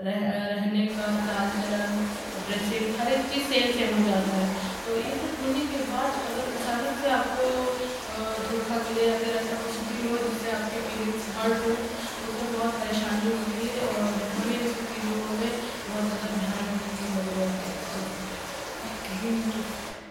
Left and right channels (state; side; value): identical; both; correlation 1.00